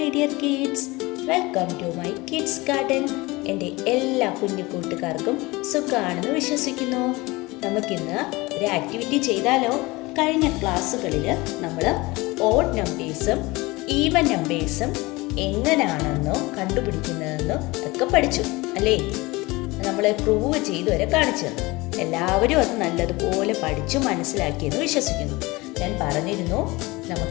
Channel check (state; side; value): quieter; right; 22.4 dB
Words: dear kids. Welcome to my kids garden. എൻ്റെ എല്ലാ കുഞ്ഞു കൂട്ടുകാർക്കും സുഖമാണെന്ന് വിശ്വസിക്കുന്നു. നമുക്കിന്ന് ഒരു ആക്ടിവിറ്റി ചെയ്താലോ? കഴിഞ്ഞ ക്ലാസ്സുകളിൽ നമ്മൾ ഓഡ് നമ്പേഴ്സും ഈവൻ നമ്പേഴ്സും എങ്ങനെയാണെന്നോ കണ്ടുപിടിക്കുന്നതെന്നോ ഒക്കെ പഠിച്ചു അല്ലേ? നമ്മൾ പ്രൂവ് ചെയ്ത് വരെ കാണിച്ചു തന്നു. എല്ലാവരും അത് നല്ലതുപോലെ പഠിച്ചു മനസ്സിലാക്കിയെന്ന് വിശ്വസിക്കുന്നു. ഞാൻ പറഞ്ഞിരുന്നു